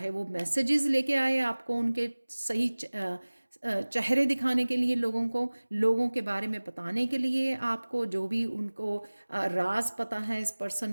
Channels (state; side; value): inverted; both; correlation -1.00